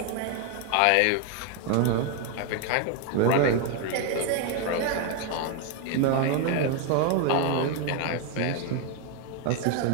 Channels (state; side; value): different; both; correlation 0.01